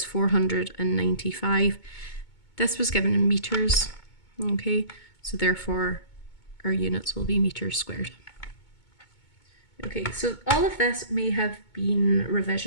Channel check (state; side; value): late; right; 2.2 ms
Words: 495. This was given in meters. Okay, so therefore our units will be meters squared. Okay, so all of this may have been